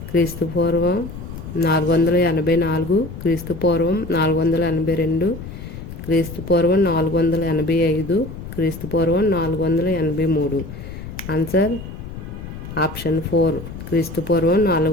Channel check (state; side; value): noise; left; rumble, 11 dB below the sound